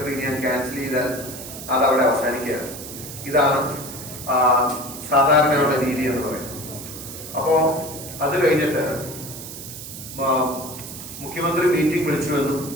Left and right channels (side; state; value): right; noise; hiss, 11 dB below the sound